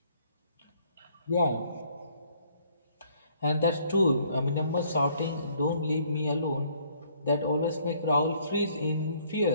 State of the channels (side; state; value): both; inverted; correlation -0.64